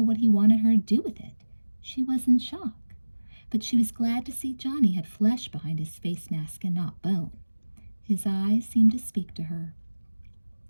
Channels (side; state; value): both; inverted; correlation -1.00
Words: what he wanted her to do with it. She was in shock. But she was glad to see Johnny had flesh behind his face mask and not bone. His eyes seemed to speak to her.